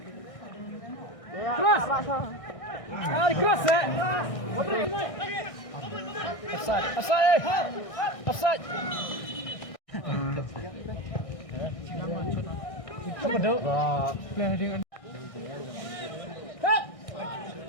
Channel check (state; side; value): late; right; 1.6 ms